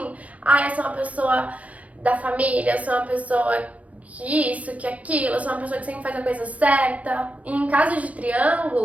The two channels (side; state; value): left; late; 0.068 ms